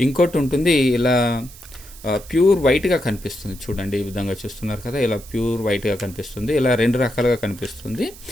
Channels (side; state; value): right; noise; hiss, 19 dB below the sound